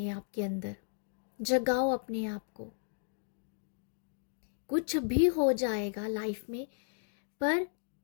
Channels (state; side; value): silent; right; digital silence